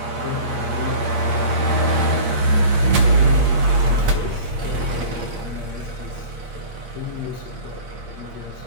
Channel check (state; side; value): late; left; 8.5 ms